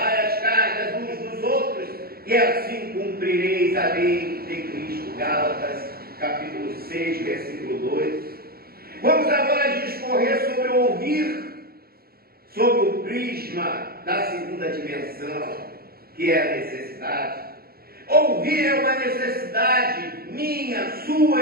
as cargas uns dos outros e assim cumprireis a lei de Cristo. Gálatas capítulo 6, versículo 2. Vamos agora discorrer sobre o ouvir, sobre o prisma da segunda dimensão, que é a necessidade. Ouvir é uma necessidade minha, sua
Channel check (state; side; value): late; left; 0.44 ms